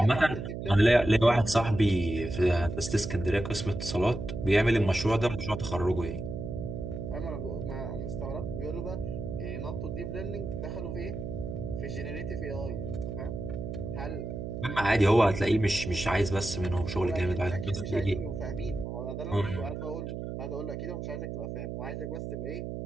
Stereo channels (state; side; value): noise; right; hum, 6 dB below the sound